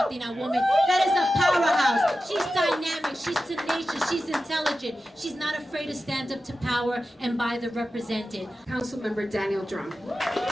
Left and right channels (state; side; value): normal; both; correlation 0.93